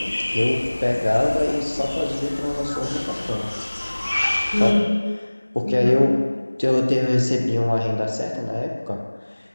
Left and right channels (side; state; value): both; inverted; correlation -1.00